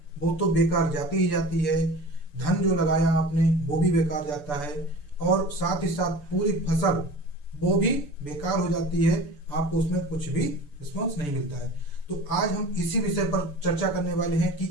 वो तो बेकार जाती ही जाती है। धन जो लगाया आपने वो भी बेकार जाता है और साथ ही साथ पूरी फसल वो भी बेकार हो जाती है। आपको उसमें कुछ भी रिस्पॉन्स नहीं मिलता है। तो आज हम इसी विषय पर चर्चा करने वाले हैं कि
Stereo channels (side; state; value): right; late; 6.9 ms